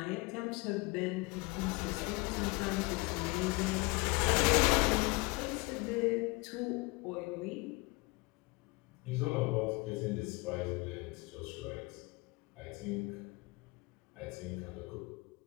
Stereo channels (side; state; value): right; quieter; 25.7 dB